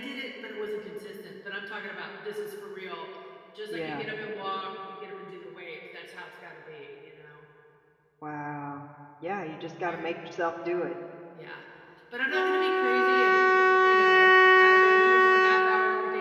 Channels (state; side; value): identical; both; correlation 1.00